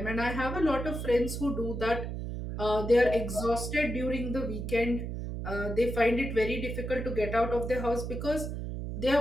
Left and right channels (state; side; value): noise; right; hum, 5 dB below the sound